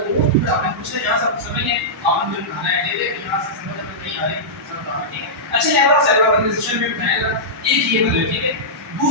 वो तो आपने पूछना, यहां सब समझ है, आपने जो बनाना है दे यहां से समझ में नहीं आ रही सब बताना, ठीक है। अच्छा लेवल ऑफ सेलुलर ऑर्गेनाइजेशन में बनाएगा एक ये बदल, ठीक है।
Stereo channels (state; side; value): normal; both; correlation -0.13